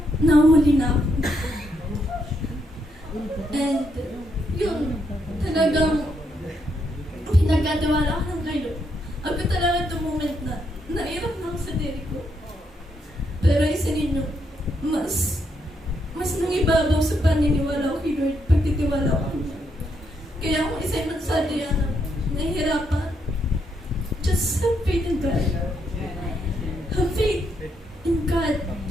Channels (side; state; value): both; normal; correlation 0.78